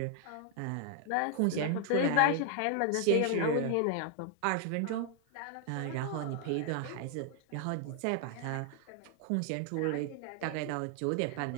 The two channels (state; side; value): different; both; correlation 0.00